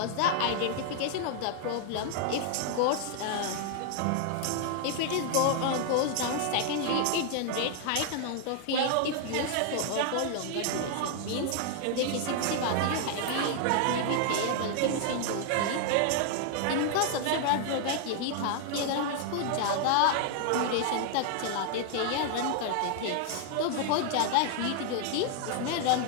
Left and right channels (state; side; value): different; both; correlation 0.00